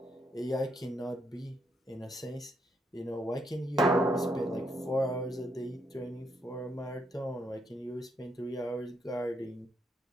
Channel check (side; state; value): both; normal; correlation 0.76